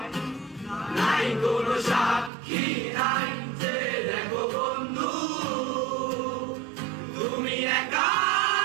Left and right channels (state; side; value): drops out; left; at 2.3 s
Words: নাই কোনো সাক্ষী নাই যে দেখো বন্ধু তুমি একা